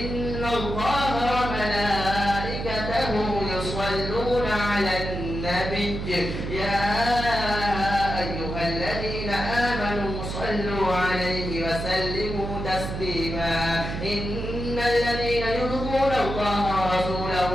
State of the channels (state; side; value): noise; right; hum, 5 dB below the sound